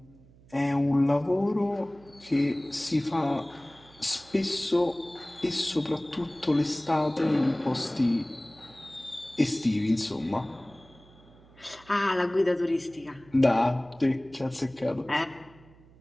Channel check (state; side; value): noise; right; hum, 25 dB below the sound